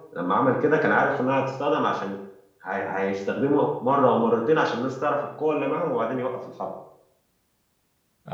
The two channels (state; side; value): identical; both; correlation 1.00